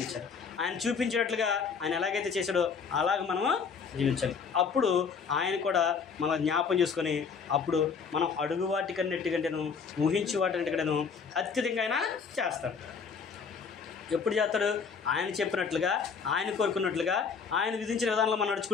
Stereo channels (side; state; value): right; quieter; 5.8 dB